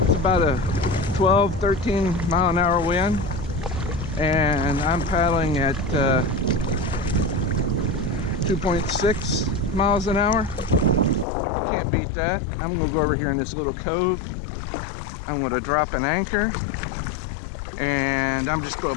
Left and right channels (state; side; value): drops out; right; at 11.2 s